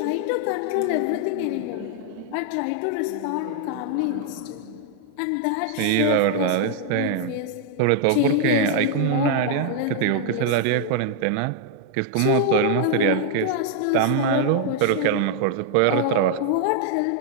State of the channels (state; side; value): different; both; correlation 0.00